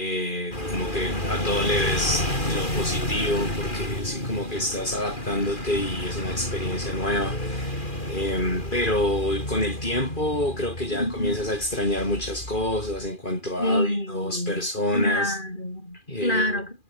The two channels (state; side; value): late; right; 2.4 ms